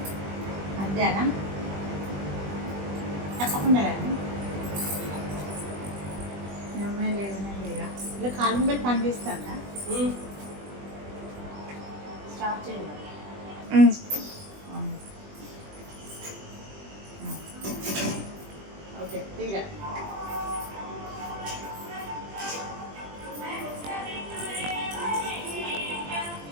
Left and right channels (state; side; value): late; left; 20 ms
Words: మధ్యాహ్నం తప్పకుండా రండి. అమ్మాయి లేదన్నా లేగా ఇలా కాలం పెట్టి పని చేస్తాడా స్టాప్ చేయాలి. ఓకే తీరా